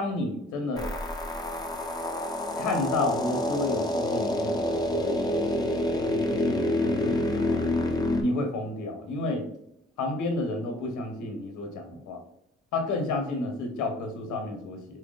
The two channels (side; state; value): both; normal; correlation 0.54